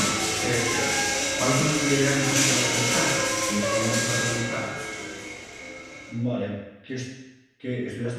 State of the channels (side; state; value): both; identical; correlation 1.00